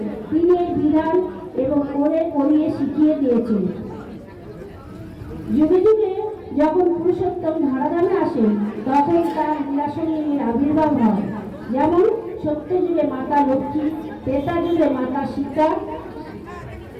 তিনি এই বিধান এবং করিয়ে শিখিয়ে দিয়েছেন। যুগে যুগে যখন পুরুষোত্তম ধরাধামে আসেন তখন তার লীলাসঙ্গিনীর আবির্ভাব হয়। যেমন সত্য যুগে মাতা লক্ষ্মী, ত্রেতা যুগে মাতা সীতা,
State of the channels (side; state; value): both; identical; correlation 1.00